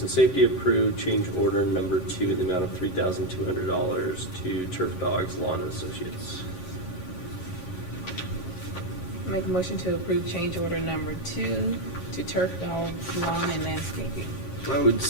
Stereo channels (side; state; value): right; late; 7.4 ms